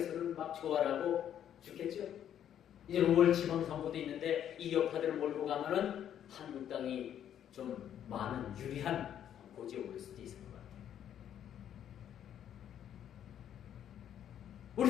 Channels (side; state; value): right; quieter; 10.0 dB